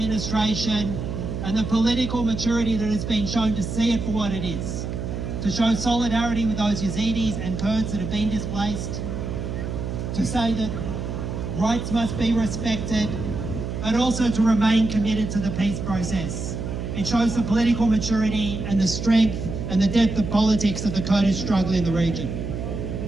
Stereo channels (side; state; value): right; noise; hum, 5 dB below the sound